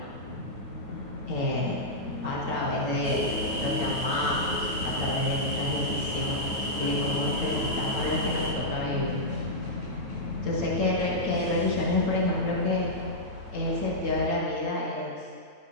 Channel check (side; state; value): left; late; 9.3 ms